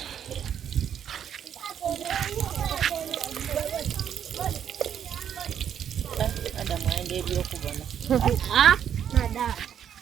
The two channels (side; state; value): left; quieter; 9.0 dB